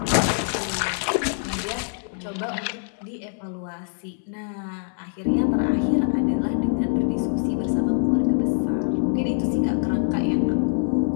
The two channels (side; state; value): right; silent; 62 dB below the other